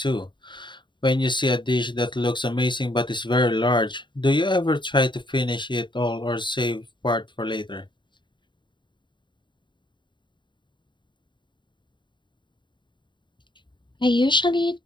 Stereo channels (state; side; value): late; right; 0.23 ms